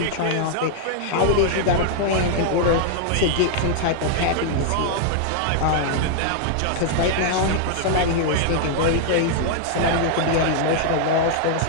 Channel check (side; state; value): both; different; correlation 0.00